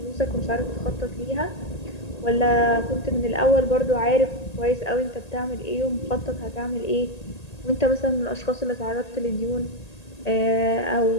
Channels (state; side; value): late; right; 1.8 ms